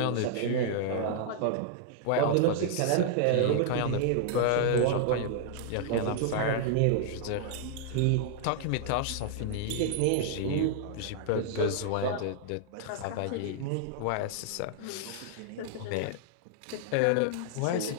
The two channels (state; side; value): different; both; correlation -0.01